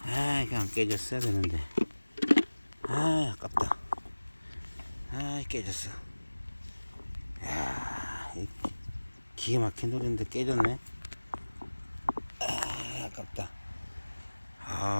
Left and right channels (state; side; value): inverted; both; correlation -1.00